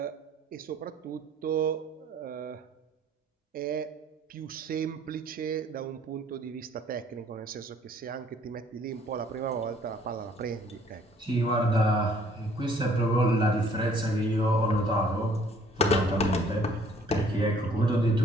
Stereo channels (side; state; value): both; normal; correlation 0.59